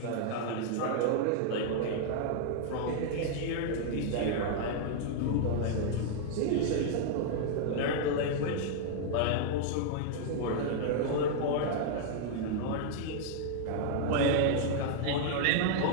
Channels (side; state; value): both; different; correlation -0.01